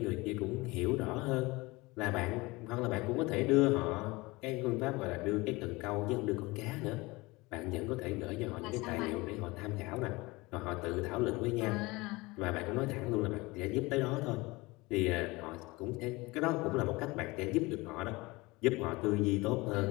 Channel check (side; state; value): right; quieter; 22.9 dB